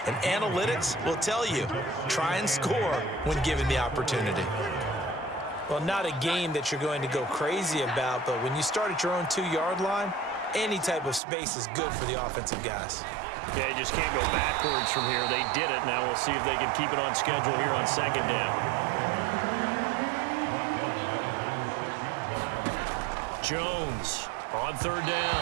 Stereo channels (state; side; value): drops out; left; at 11.2 s